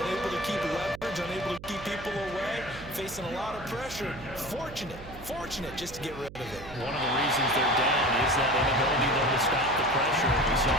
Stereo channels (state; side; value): noise; right; hum, 15 dB below the sound